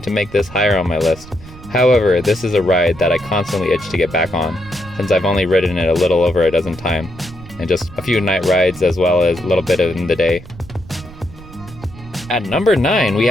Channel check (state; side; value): noise; right; rumble, 18 dB below the sound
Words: make this higher on my list. However, this is a ride that I constantly itch to get back on, since I've only ridden it a little over a dozen times, and just a few night rides as well as a little bit in the day. At number 9, we